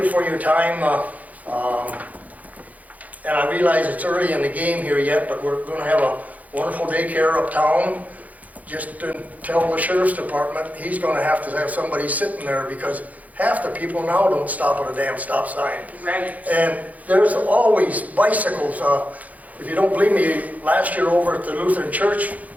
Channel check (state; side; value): late; left; 0.076 ms